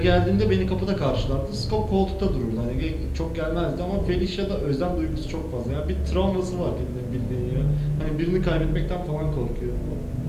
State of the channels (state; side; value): identical; both; correlation 1.00